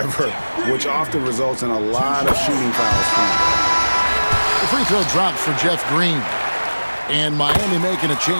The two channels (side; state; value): both; inverted; correlation -1.00